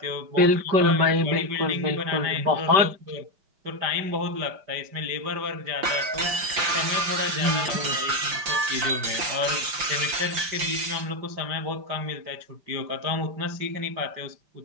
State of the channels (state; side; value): late; left; 5.8 ms